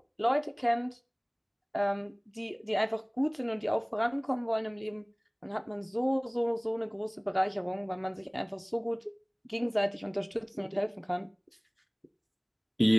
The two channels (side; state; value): both; identical; correlation 1.00